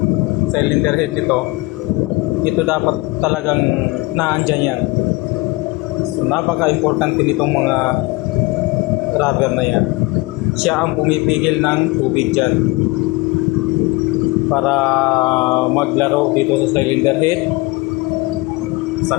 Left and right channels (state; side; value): quieter; right; 22.9 dB